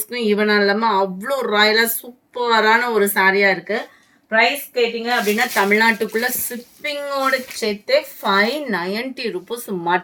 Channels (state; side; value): identical; both; correlation 1.00